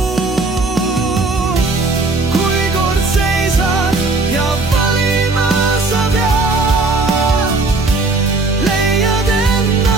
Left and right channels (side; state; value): left; quieter; 3.5 dB